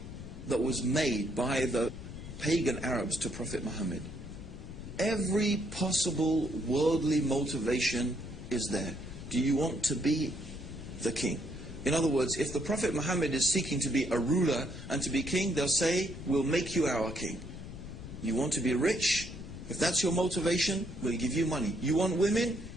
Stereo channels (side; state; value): left; noise; rumble, 11 dB below the sound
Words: that was made by the pagan Arabs to Prophet Muhammad, every possible worldly motivation is there. Do you want to be the king? In other words, if the Prophet Muhammad is seeking to be a ruler and to be king, they'll say, we'll make you our king. You want to be rich? If that's your motivation, we'll give you money. You want women?